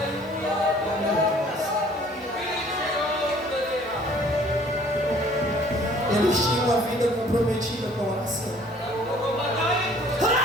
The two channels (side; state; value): both; normal; correlation 0.55